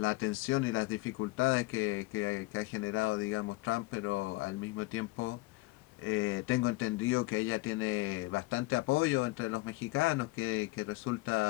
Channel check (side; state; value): right; quieter; 21.0 dB